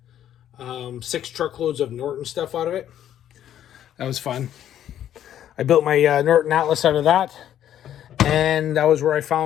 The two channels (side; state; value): right; quieter; 10.9 dB